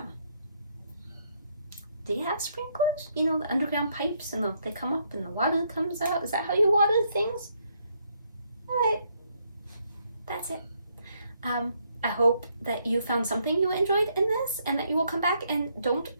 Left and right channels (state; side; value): inverted; both; correlation -0.73